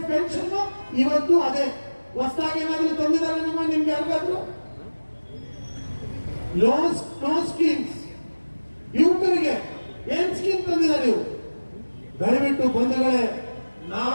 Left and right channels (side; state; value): both; inverted; correlation -1.00